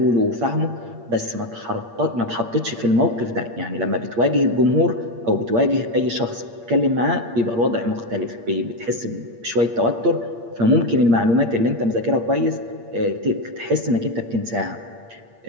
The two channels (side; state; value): left; late; 8.6 ms